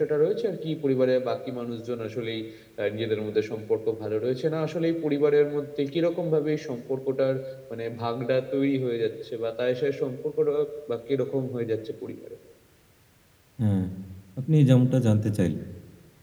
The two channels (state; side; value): identical; both; correlation 1.00